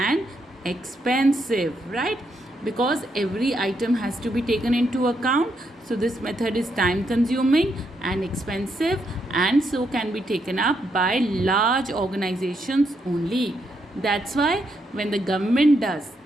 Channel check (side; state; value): both; normal; correlation 0.78